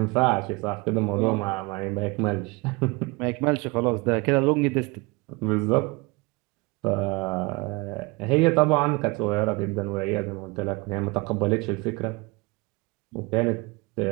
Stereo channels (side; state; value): left; quieter; 25.4 dB